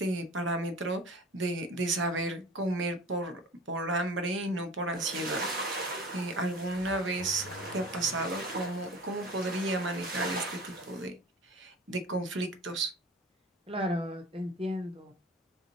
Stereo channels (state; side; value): normal; both; correlation 0.39